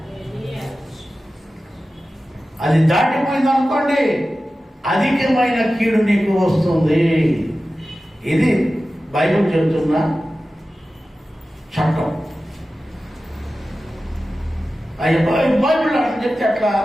అది దాటిపోయింది అనుకోండి, అధికమైన కీడు నీకు వస్తుంది. ఇది బైబిల్ చెబుతున్న చట్టం. బైబిల్ అట్లా చెప్తే అట్లా,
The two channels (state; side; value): normal; both; correlation 0.95